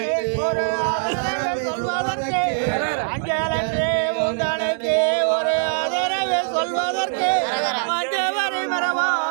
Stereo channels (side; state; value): left; silent; 64 dB below the other